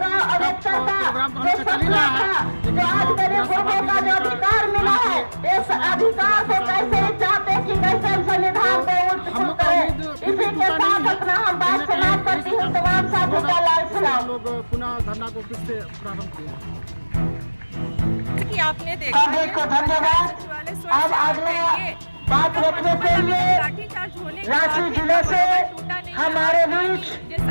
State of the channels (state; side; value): inverted; both; correlation -1.00